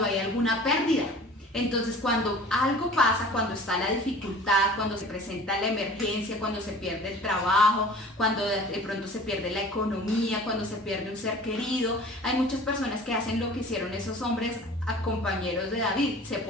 hay alguna pérdida. Entonces, cuando algo pasa, cuando está la dificultad, cuando se presenta la emergencia, cuando se pierde el trabajo, cuando de pronto se pierde la economía, cuando se pierde un ser querido, hay muchas personas que hacen lo que hicieron esos hombres a compañeros de David, se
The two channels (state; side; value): normal; both; correlation 0.44